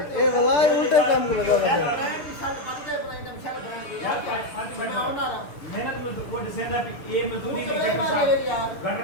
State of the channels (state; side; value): late; right; 6.8 ms